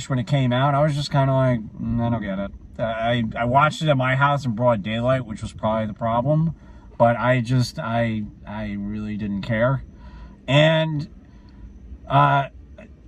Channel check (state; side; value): identical; both; correlation 1.00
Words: when it came out. I was just kind of like, I don't get it. I watched it at my house in broad daylight, which was probably the problem. But I really didn't care. And I